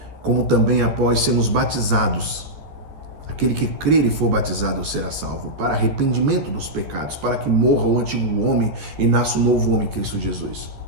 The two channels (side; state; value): left; late; 12 ms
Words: como também após sermos batizados, aquele que crer e for batizado será salvo, para arrependimento dos pecados, para que morra o antigo homem e nasça o novo homem, Cristo Jesus.